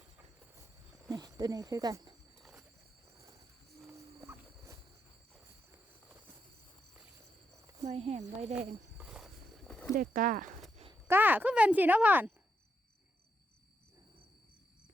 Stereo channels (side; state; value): both; normal; correlation 0.82